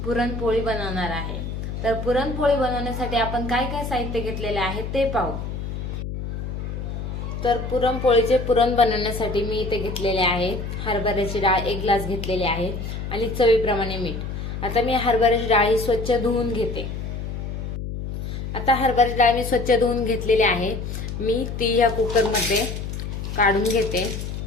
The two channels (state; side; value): noise; left; hum, 6 dB below the sound